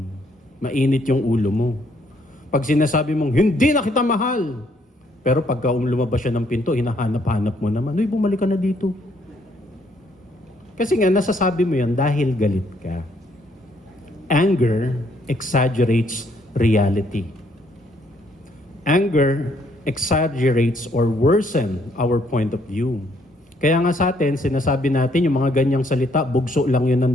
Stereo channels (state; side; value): normal; both; correlation 0.69